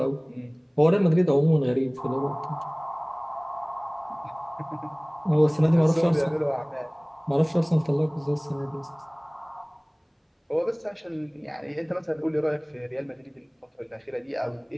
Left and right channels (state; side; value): identical; both; correlation 1.00